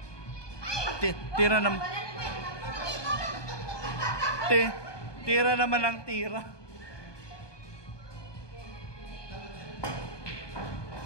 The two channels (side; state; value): right; late; 1.2 ms